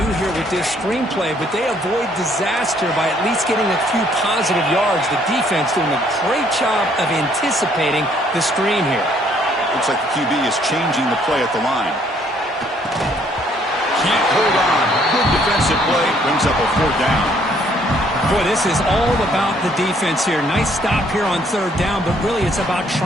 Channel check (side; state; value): both; normal; correlation 0.65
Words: here with this screenplay, but they avoid disaster by at least getting a few positive yards. The defense doing a great job of anticipating the screen here. Looks like the QB is changing the play at the line. Can't hold on. Good defensive play. Brings up a fourth down. Boy, this is all about the defense here. Nice stop here on third down, but really it's about